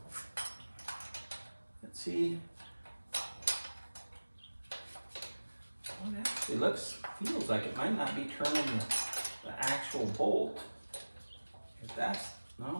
Let's see. Well, it actually feels like it might not be turning the actual bolt. If that's,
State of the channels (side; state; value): both; inverted; correlation -1.00